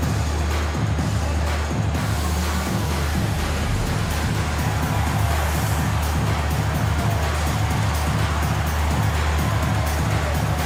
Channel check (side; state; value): both; identical; correlation 1.00